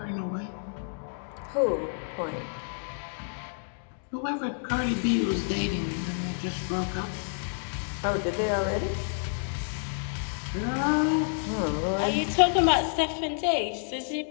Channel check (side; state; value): right; silent; digital silence